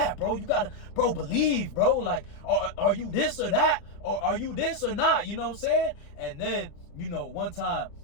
bro. You gotta, bro, believe, bro. Like, are you this or that? Or are you this or not? You know what I'm saying? And then, you know, one time,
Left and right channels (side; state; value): right; late; 34 ms